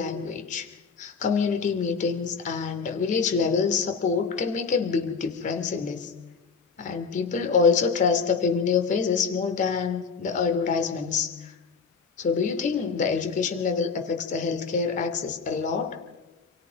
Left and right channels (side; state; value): right; quieter; 5.2 dB